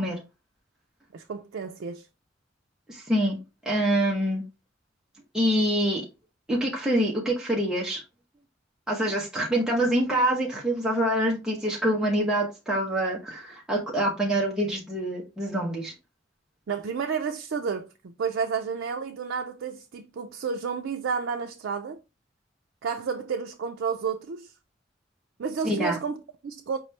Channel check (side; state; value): both; normal; correlation 0.39